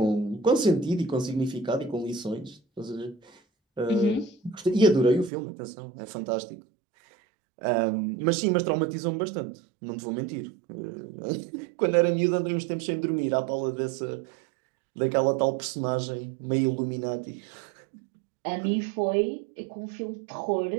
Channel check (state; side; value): drops out; left; at 5.3 s